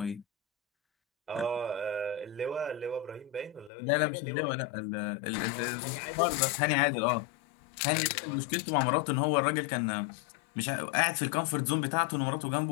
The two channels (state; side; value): drops out; right; at 3.7 s